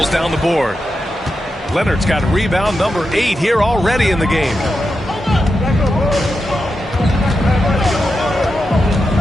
down the board. Leonard's got rebound number 8 here already in the game.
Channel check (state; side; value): normal; both; correlation 0.88